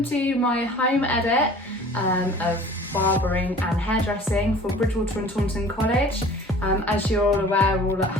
to my home edit of barbering and hairdressing for Bridgewater and Taunton College. As you're all aware, we're all at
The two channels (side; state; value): both; normal; correlation 0.46